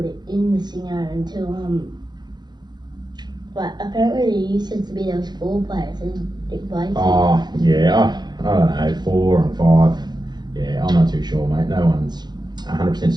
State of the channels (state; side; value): late; left; 0.21 ms